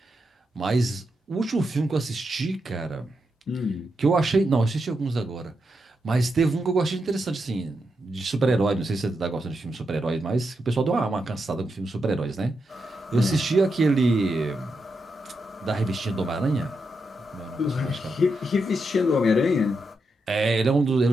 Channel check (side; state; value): both; normal; correlation 0.84